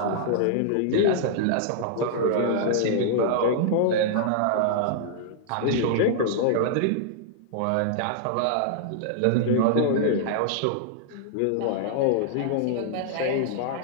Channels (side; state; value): both; different; correlation -0.01